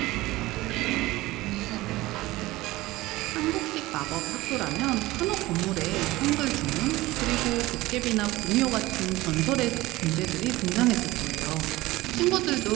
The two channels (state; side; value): quieter; left; 18.8 dB